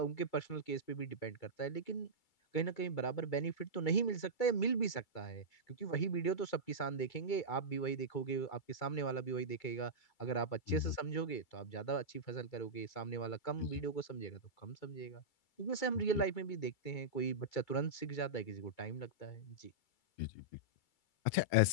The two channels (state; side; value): late; right; 2.3 ms